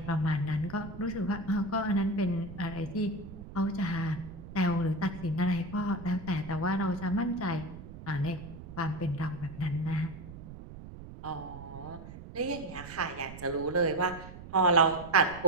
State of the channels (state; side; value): noise; right; rumble, 14 dB below the sound